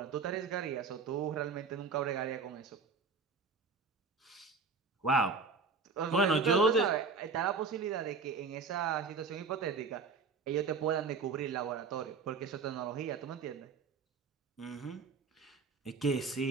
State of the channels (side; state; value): left; quieter; 4.7 dB